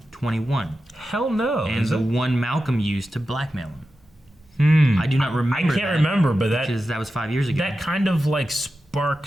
Hell no. And the one Malcolm used to blackmail him. I do not remember. I can't remember, but because that was 5 years ago. That kind of like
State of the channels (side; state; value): both; normal; correlation 0.92